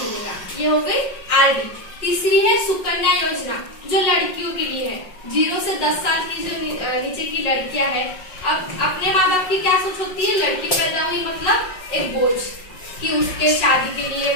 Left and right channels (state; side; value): late; right; 5.4 ms